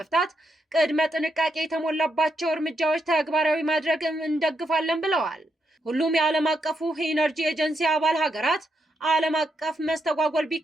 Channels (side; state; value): both; normal; correlation 0.81